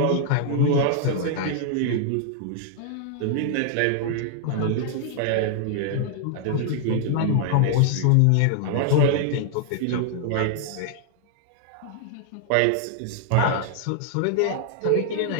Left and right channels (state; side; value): different; both; correlation -0.01